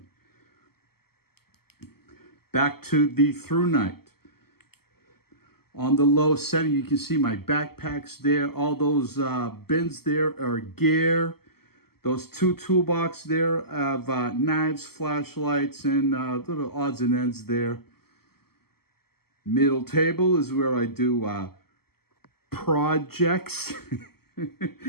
Back to the ThruNite. On the low setting, you can see my backpacks there. All those bins there are gear. Those two toolbox there have knives, flashlights, and little odds and ends there. Middle table is where I do projects.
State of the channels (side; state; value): right; late; 0.95 ms